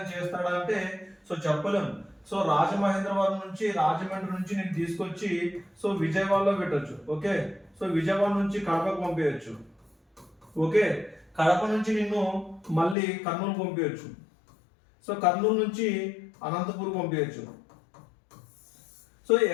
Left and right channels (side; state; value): right; drops out; at 13.0 s